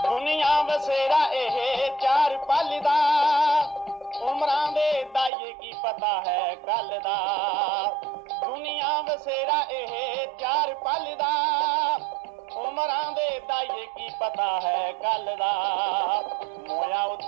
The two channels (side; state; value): left; drops out; at 5.3 s